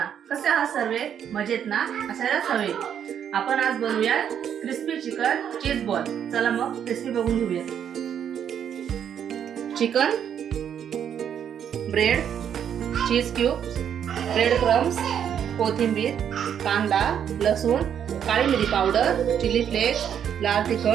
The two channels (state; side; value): quieter; left; 8.8 dB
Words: कसे आहात सर्वे? मजेत ना? असायलाच हवे. आपण आज बनवूया क्रिस्पी चिकन चीज बॉल. चला मग रेसिपी बघून घेऊया. चिकन, ब्रेड, चीज क्यूब्स, ब्रेड क्रम्स, कोथिंबीर, कांदा, लसूण, काळी मिरी पावडर, चिली फ्लेक्स, लाल